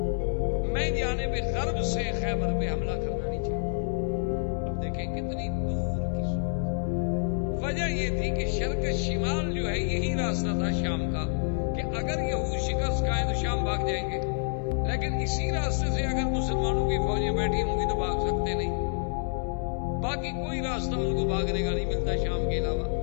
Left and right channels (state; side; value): silent; right; 59 dB below the other